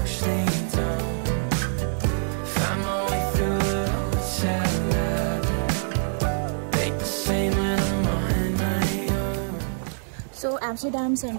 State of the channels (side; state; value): left; silent; digital silence